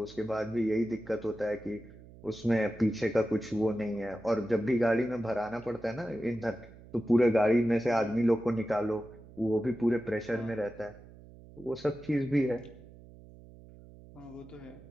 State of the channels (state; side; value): noise; right; hum, 20 dB below the sound